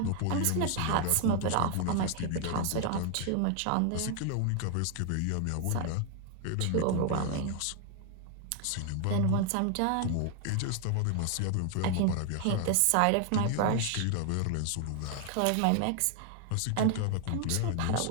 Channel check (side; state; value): both; different; correlation 0.00